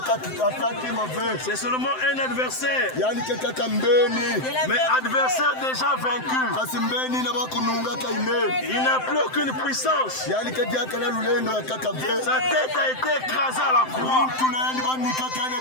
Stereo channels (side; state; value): right; late; 7.8 ms